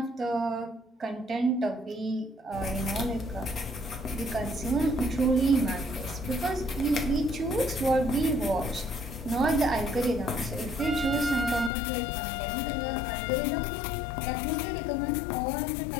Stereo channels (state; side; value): drops out; right; at 11.7 s